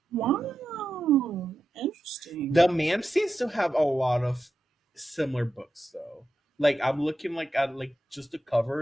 wow. The Interesting. man seems to have a lot of similar books though. Like I'm looking like at like just the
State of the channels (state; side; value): normal; both; correlation 0.89